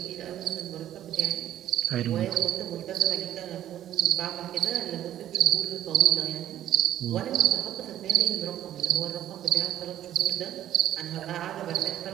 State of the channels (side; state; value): left; quieter; 11.9 dB